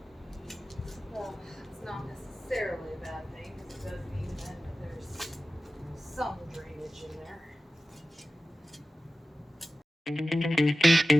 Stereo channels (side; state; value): both; normal; correlation 0.95